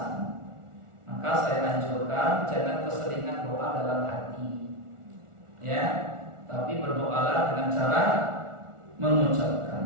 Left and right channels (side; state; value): left; late; 1.4 ms